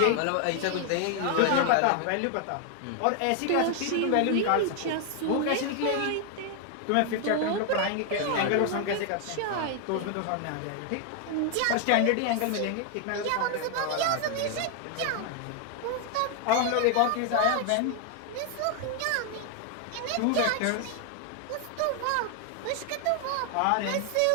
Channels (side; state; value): both; different; correlation 0.00